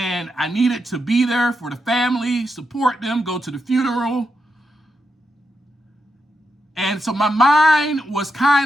I needed to be there for the family, support them, go to the funeral. And so my mind was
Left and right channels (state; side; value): normal; both; correlation 0.85